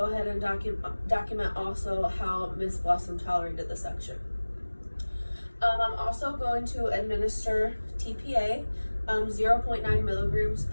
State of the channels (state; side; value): inverted; both; correlation -1.00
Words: ahead and document also how Miss Blossom tolerated the suction. I'm also going to administer TPA, 0.9 milligrams